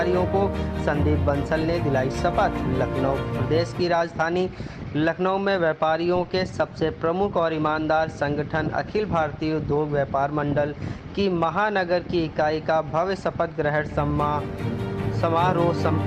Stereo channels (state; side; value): identical; both; correlation 1.00